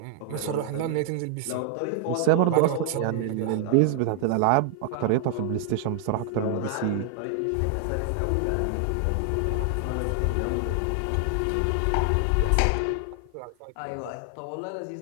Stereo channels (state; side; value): different; both; correlation 0.00